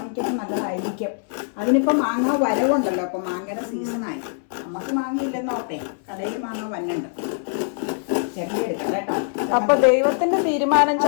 നല്ലതായിരിക്കും. അതിനിപ്പോ മാങ്ങ വരവുണ്ടല്ലോ, അപ്പൊ മാങ്ങയുടെ സീസണായി. നമുക്ക് മാങ്ങ ഇല്ലെന്ന് ഓർത്തേ, കടയിൽ മാങ്ങ വന്നുണ്ട്, ചെറിയ എടുക്കാം കേട്ടോ. അപ്പൊ ദൈവത്തിന്റെ തീരുമാനം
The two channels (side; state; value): right; silent; 63 dB below the other